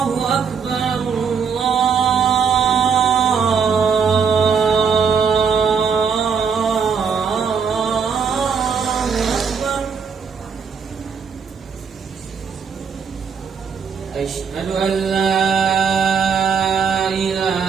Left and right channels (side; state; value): left; quieter; 6.2 dB